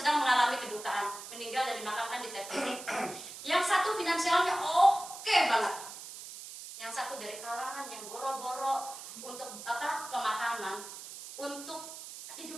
mengalami kedukaan, meninggal dan dimakamkan di TPU. Yang satu finansialnya oke banget, yang satu dari kalangan yang boro-boro untuk pemakaman, untuk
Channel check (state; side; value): noise; right; hiss, 12 dB below the sound